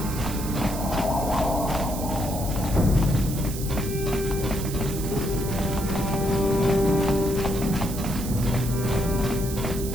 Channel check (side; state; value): right; noise; hiss, 10 dB below the sound